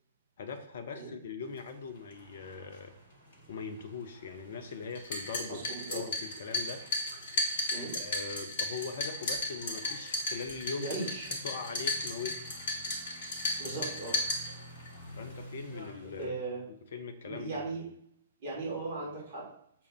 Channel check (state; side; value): inverted; both; correlation -0.37